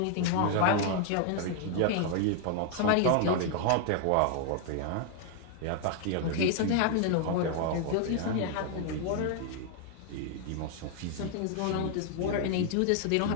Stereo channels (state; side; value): different; both; correlation 0.00